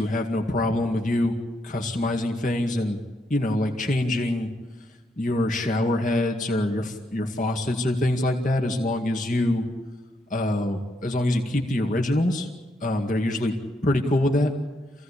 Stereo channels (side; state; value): both; normal; correlation 0.78